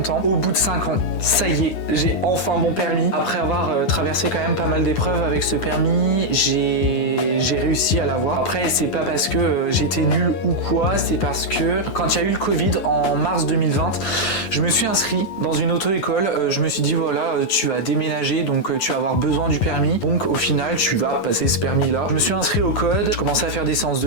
Au bout de 5 ans, ça y est, j'ai enfin mon permis. Après avoir traversé quand même pas mal d'épreuves avec ce permis, j'ai réussi à l'avoir. Après, c'est pas parce que j'étais nul ou quoi, c'est parce que quand il y a eu le Covid en mars 2020, je me suis inscrit dans une auto-école. Je me suis dit voilà, tu vas déménager, donc tu vas avoir besoin du permis. Donc au final, tu vas passer ce permis-là. Je me suis inscrit au code, je commençais à faire des séances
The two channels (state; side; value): late; right; 11 ms